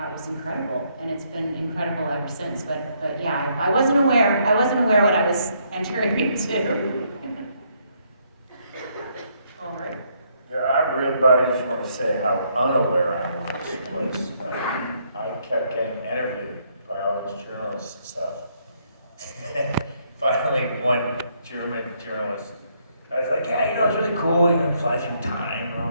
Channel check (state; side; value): inverted; both; correlation -0.72